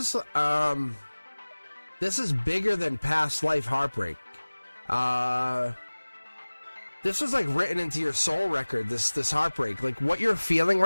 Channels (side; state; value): both; inverted; correlation -1.00